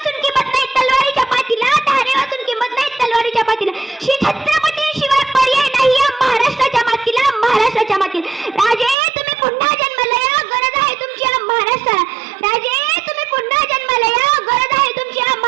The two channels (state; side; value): drops out; left; at 9.0 s